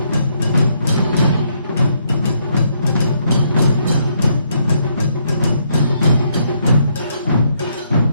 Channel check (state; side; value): inverted; both; correlation -0.72